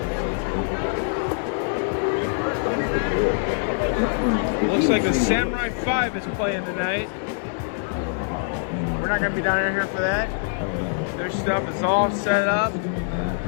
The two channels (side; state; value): right; silent; digital silence